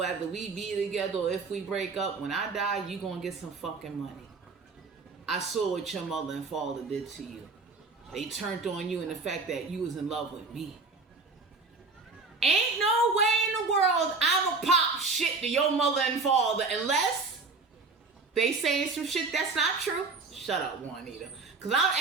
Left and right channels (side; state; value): left; quieter; 4.0 dB